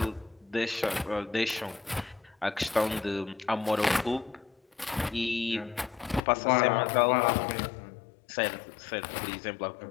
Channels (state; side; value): drops out; right; at 6.2 s